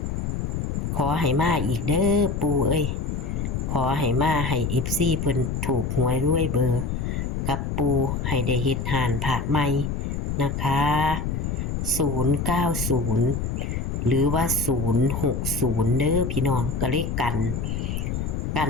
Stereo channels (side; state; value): left; noise; rumble, 2 dB below the sound